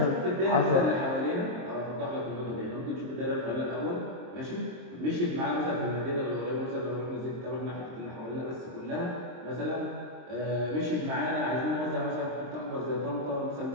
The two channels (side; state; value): left; late; 23 ms